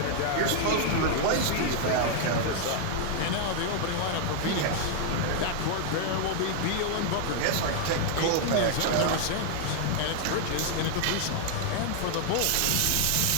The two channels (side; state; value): both; different; correlation 0.00